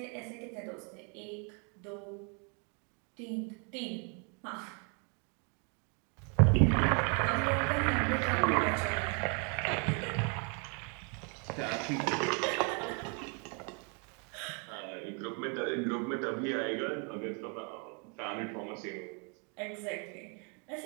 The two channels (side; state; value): left; quieter; 36.8 dB